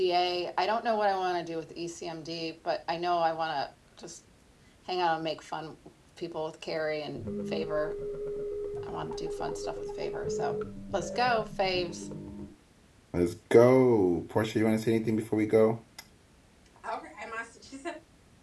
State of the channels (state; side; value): identical; both; correlation 1.00